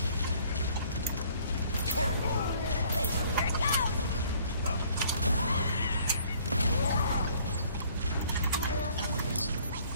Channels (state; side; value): inverted; both; correlation -0.58